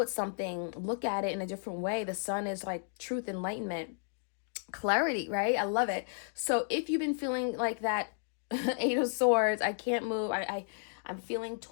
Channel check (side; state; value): right; silent; digital silence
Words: something, look at it in a different way. The sun is like truth, enlightenment, clarity, right? I love it. So if you've been feeling like that Eight of Swords, I can't move, I'm feeling